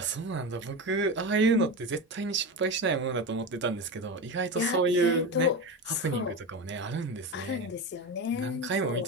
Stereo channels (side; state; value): both; normal; correlation 0.21